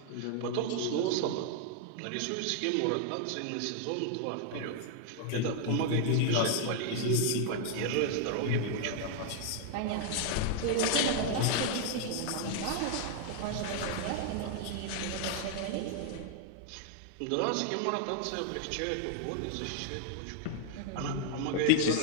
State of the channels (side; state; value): both; different; correlation 0.00